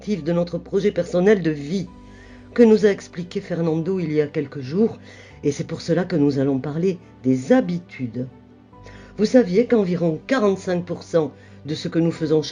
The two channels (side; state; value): both; identical; correlation 1.00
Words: de notre projet personnel de vie que nous a expliqué Fernando il y a quelques jours, et c'est pour cela que nous allons parler des habitudes. Vous saviez qu'environ 45% de ce que nous faisons